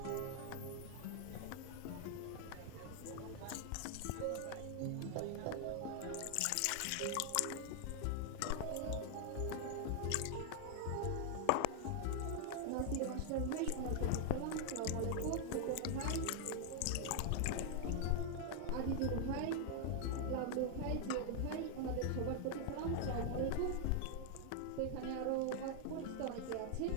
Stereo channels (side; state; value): both; different; correlation 0.00